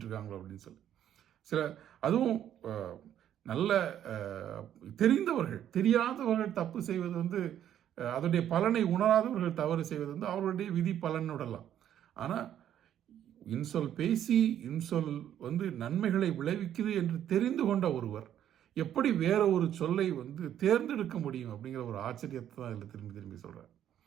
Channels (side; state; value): left; quieter; 10.6 dB